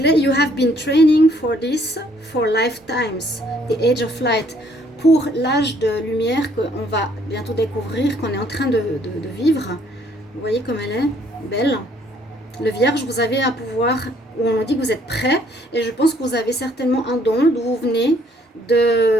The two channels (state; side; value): normal; both; correlation 0.64